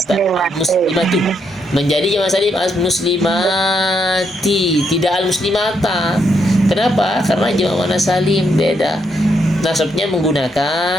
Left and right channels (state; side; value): normal; both; correlation 0.77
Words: muslimatun menjadi jamak salim al-muslimati, tidak al-muslimata. Kenapa? Karena jamak muannas salim beda. Nasabnya